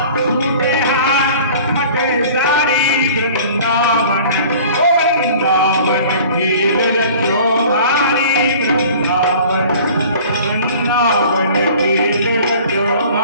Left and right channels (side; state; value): both; inverted; correlation -0.46